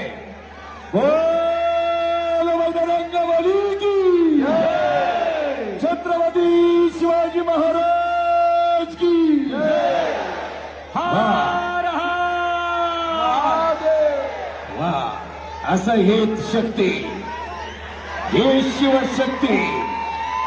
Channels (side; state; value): both; identical; correlation 1.00